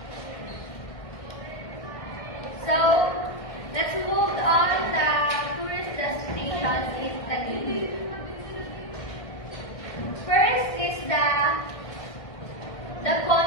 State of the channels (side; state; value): right; late; 1.6 ms